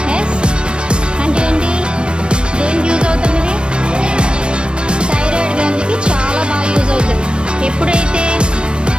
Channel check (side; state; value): left; late; 0.056 ms